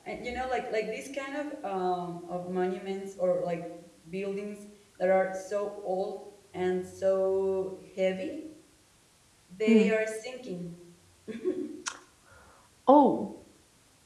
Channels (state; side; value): identical; both; correlation 1.00